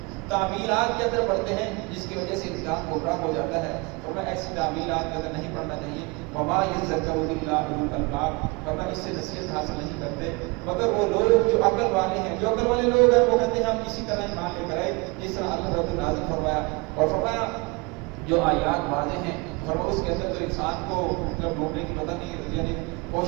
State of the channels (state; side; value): quieter; left; 27.3 dB